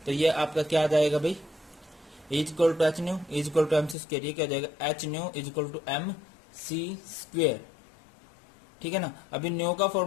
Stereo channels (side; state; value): right; drops out; at 4.0 s